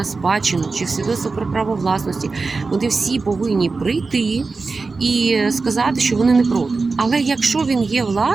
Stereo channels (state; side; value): quieter; left; 4.1 dB